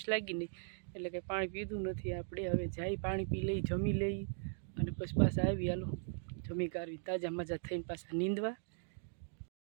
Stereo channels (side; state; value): left; silent; digital silence